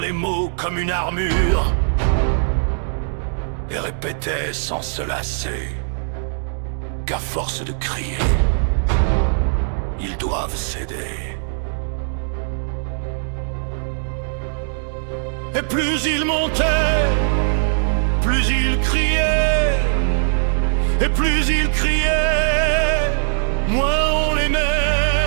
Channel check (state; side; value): silent; left; digital silence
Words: mots comme une armure, et répétait sans se lasser qu'à force de crier, ils doivent céder. Et plus il montait, plus il criait, et plus il criait, moins on l'aimait.